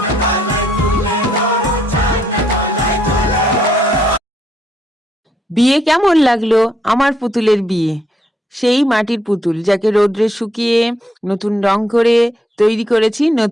বিয়ে কেমন লাগলো? আমার পুতুলের বিয়ে, সেই মাটির পুতুল যাকে রোদ্রে শুকিয়ে নতুন রং করে তৈরি করেছি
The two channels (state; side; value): normal; both; correlation 0.73